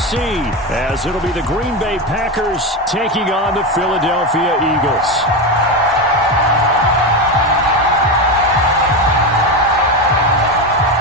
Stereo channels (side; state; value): both; normal; correlation 0.15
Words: as it'll be the Green Bay Packers taking on the Philadelphia Eagles.